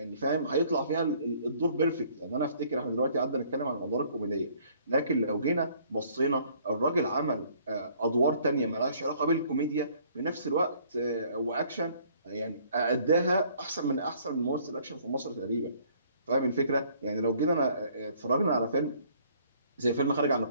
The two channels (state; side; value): inverted; both; correlation -0.60